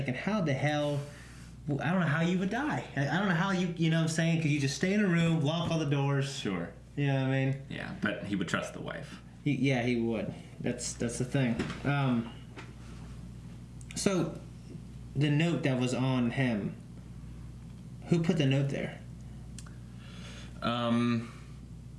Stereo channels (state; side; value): identical; both; correlation 1.00